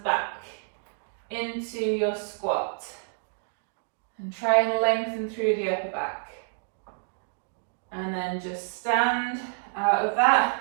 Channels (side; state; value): left; silent; digital silence